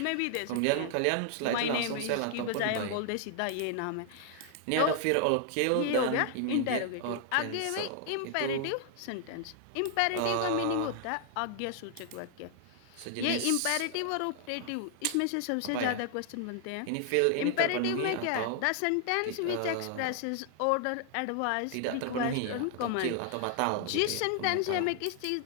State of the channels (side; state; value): both; different; correlation 0.00